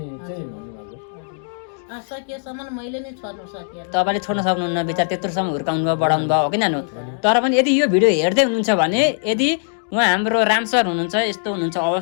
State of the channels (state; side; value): silent; right; digital silence